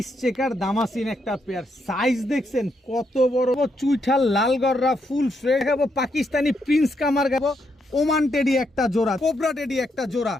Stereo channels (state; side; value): normal; both; correlation 0.78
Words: চেকার দামাসিন একটা পেয়ার। সাইজ দেখছেন কত বড়, চুইঠাল লাল গররা ফুল ফ্রেশ। পাকিস্তানি প্রিন্স কামার গাবো, ওমান টেডি একটা জোড়া, কোবরা টেডি একটা জোড়া,